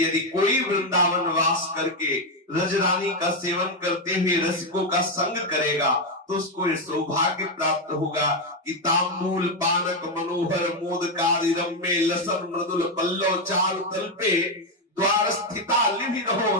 यदि कोई वृंदावन वास करके रजरानी का सेवन करते हुए रसिकों का संग करेगा तो उसको ये सौभाग्य प्राप्त होगा कि तांबूल पानक मनोहर मोदकारी रम्य लसन मृदुल पल्लव चारु तल्पे द्वार स्थिता लिभि रहो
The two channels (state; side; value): normal; both; correlation 0.06